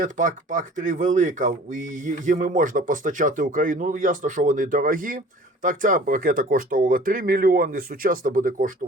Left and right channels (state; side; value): normal; both; correlation 0.47